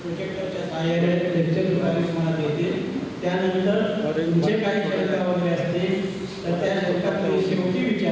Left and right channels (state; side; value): identical; both; correlation 1.00